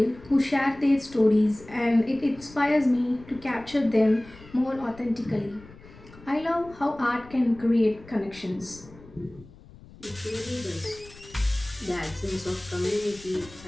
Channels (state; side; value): noise; left; rumble, 21 dB below the sound